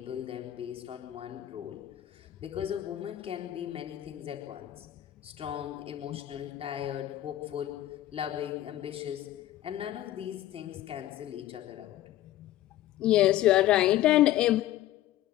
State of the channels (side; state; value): right; quieter; 13.9 dB